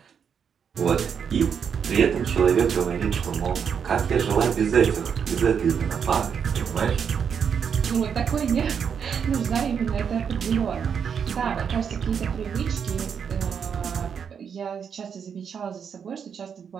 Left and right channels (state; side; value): quieter; left; 7.2 dB